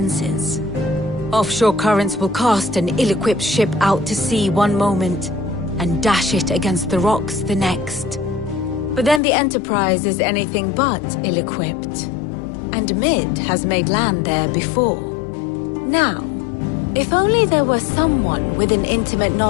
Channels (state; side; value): drops out; right; at 9.2 s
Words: Offshore currents will cast an ill-equipped ship out to sea one moment, and dash it against the rocks the next. But then the Enterprise is anything but ill-equipped, and Mid has made land there before. Now, if only there were someone with an intimate